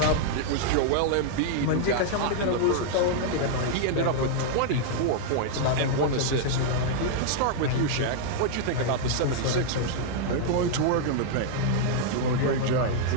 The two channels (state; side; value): different; both; correlation -0.01